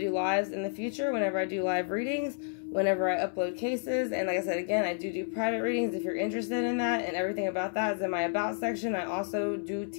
lives in the future, whenever I do live readings, whenever I upload cases. And like I said, again, I do private readings if you're interested in that, and everything about that is in my About section. I also do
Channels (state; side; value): silent; right; 57 dB below the other